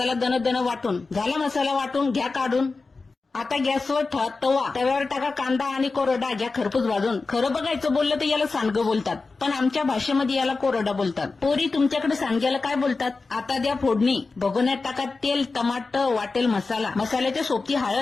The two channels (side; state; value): right; quieter; 4.0 dB